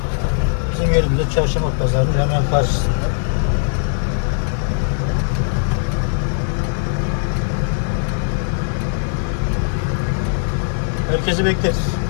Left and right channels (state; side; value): silent; right; digital silence